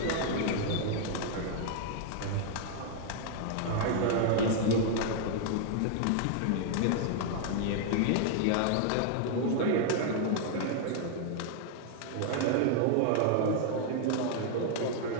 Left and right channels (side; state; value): both; different; correlation 0.00